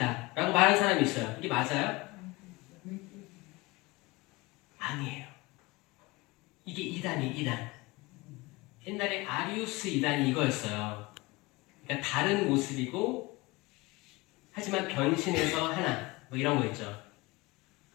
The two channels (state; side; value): quieter; right; 23.0 dB